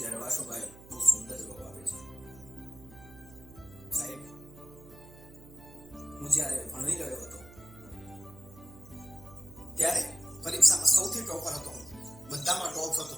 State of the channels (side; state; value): right; noise; hum, 19 dB below the sound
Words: વાસુભાઈ બહુ સુંદર જવાબ આપે છે, સાહેબ હું જ્યારે ભણી રહ્યો હતો ત્યારે પરીક્ષામાં સૌથી ટોપર હતો, બધામાં ટોપ હતો